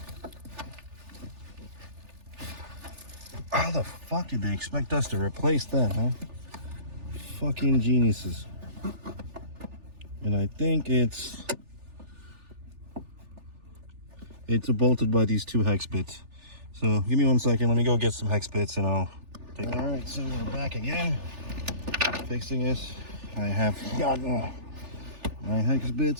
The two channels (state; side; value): late; left; 3.4 ms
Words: How the fuck did they expect us to replace that, huh? Fucking geniuses. And I think it's bolted by these 2 hex bits. So give me 1 second. Let me go get some hex bits and I'll take. All right, so we're back again, fixing this. I have gotten my hex